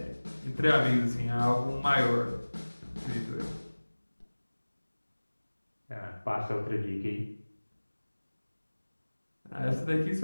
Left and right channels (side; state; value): both; inverted; correlation -1.00